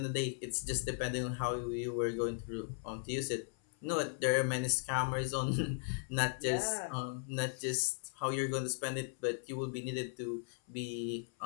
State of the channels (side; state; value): right; silent; 53 dB below the other